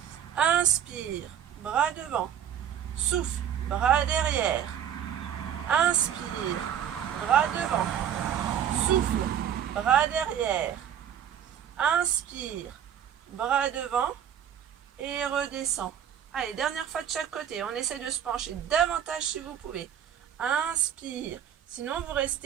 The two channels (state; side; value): quieter; left; 9.4 dB